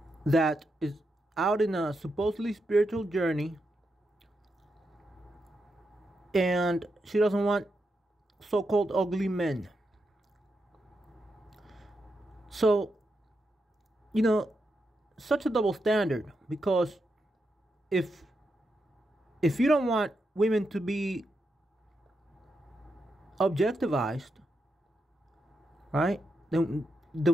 that is out in a supposedly spiritual journey, and she doesn't want so-called ugly men. So, you know, such a double standard, because if you don't want women to be objectivized, right? Then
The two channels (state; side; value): normal; both; correlation 0.84